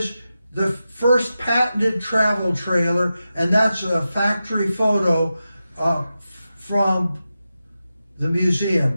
the first patented travel trailer, and that's a factory photo from the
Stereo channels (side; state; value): both; inverted; correlation -0.91